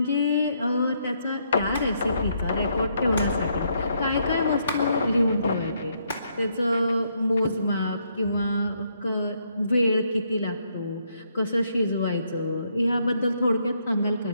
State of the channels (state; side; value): inverted; both; correlation -0.74